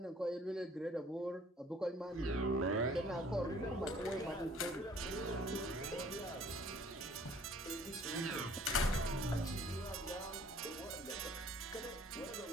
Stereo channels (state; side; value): normal; both; correlation 0.55